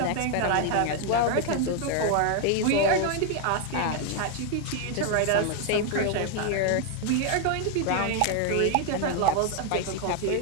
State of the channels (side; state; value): both; different; correlation 0.01